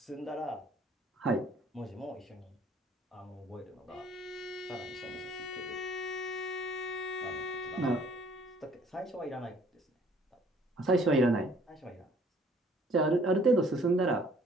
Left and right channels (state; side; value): normal; both; correlation 0.58